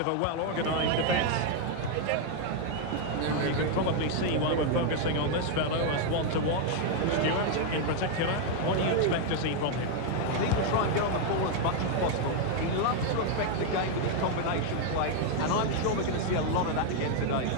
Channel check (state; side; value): different; both; correlation 0.00